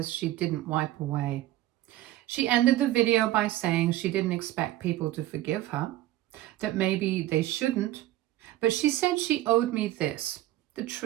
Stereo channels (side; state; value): left; quieter; 15.0 dB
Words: she didn't wipe away. She ended the video by saying she didn't expect people to forgive her, that maybe they shouldn't, but she said she owed me this, the